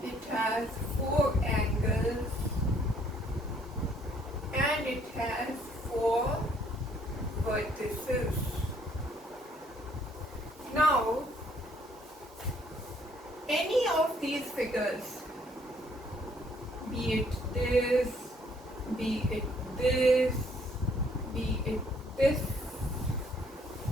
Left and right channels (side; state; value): both; normal; correlation 0.64